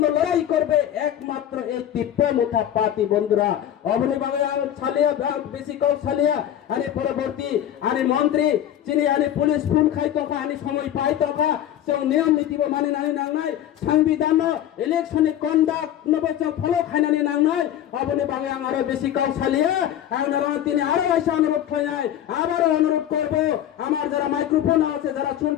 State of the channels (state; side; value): quieter; right; 11.1 dB